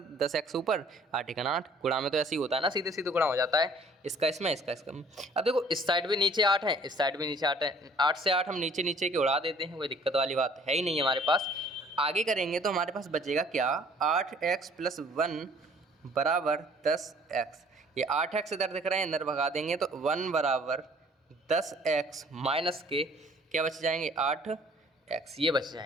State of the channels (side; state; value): both; normal; correlation 0.56